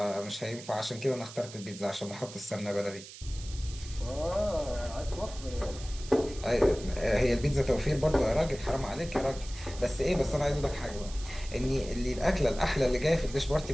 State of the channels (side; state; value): right; noise; hiss, 15 dB below the sound